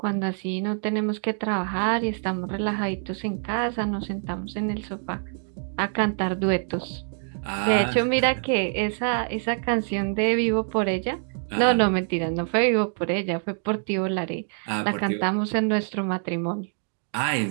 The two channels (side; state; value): left; silent; 61 dB below the other